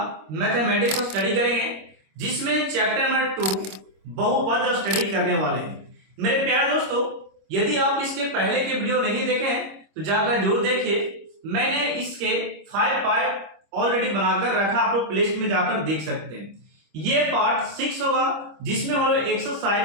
मैथमेटिक्स को स्टडी करेंगे, जिसमें चैप्टर नंबर 2 बहुपद स्टडी करने वाले हैं। मेरे प्यारे दोस्तों, यदि आप इसके पहले के वीडियो नहीं देखे हैं तो जाकर जरूर देखिए। मैंने इसके 5 पार्ट ऑलरेडी बनाकर रखा, आप लोग प्लेलिस्ट में जाकर देख सकते हैं। ये पार्ट 6 होगा, जिसमें हम लोग एक्सरसाइज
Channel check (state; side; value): late; left; 26 ms